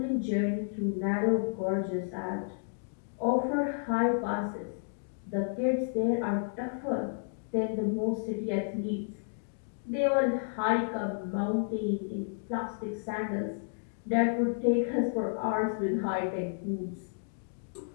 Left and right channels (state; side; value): silent; right; digital silence